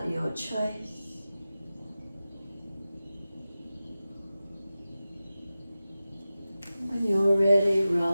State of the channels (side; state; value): both; inverted; correlation -0.95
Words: your choice. When you're ready,